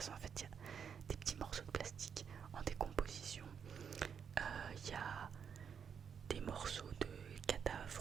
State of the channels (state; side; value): quieter; left; 7.2 dB